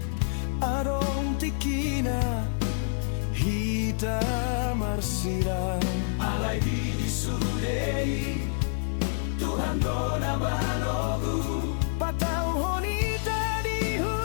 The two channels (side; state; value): right; silent; 56 dB below the other